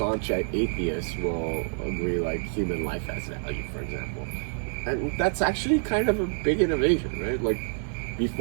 atheists will agree like human life has value, for example. And that's actually kind of a big innovation, right? Like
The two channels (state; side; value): silent; left; 60 dB below the other